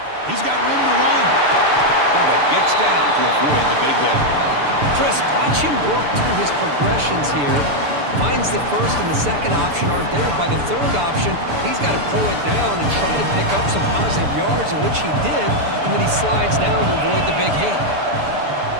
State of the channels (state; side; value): late; left; 6.9 ms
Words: He's got room to run. Quarterback gets down to avoid the big hit. Chris, watch him work through his progressions here. Finds the first and the second option aren't there. By the third option, he's got to pull it down and try to pick up some positive yards, of which he did, and then he slides down to avoid the big hit.